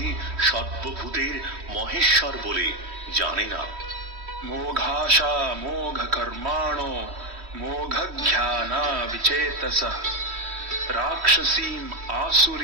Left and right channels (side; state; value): left; late; 3.1 ms